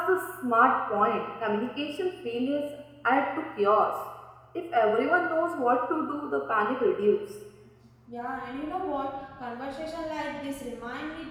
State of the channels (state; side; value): identical; both; correlation 1.00